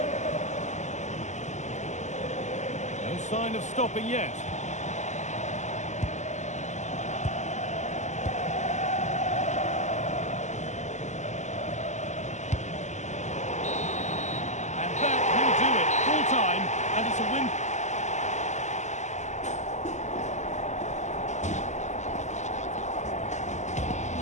No sign of stopping yet. And it's a win.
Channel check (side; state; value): right; late; 0.34 ms